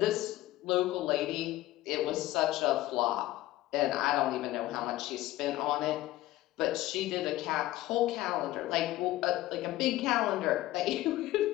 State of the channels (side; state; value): right; quieter; 16.2 dB